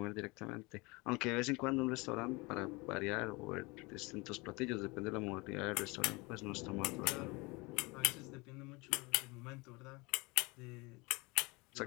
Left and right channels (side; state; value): right; quieter; 25.7 dB